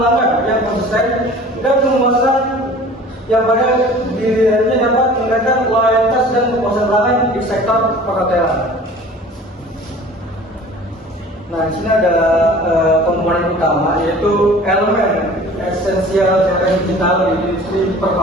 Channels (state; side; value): normal; both; correlation 0.45